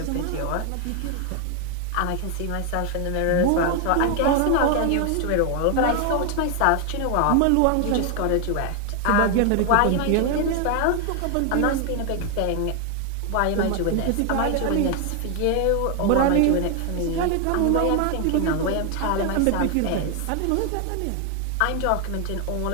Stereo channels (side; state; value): both; different; correlation 0.01